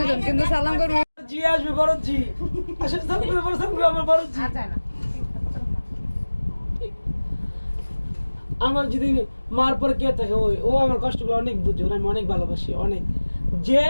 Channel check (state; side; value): inverted; both; correlation -1.00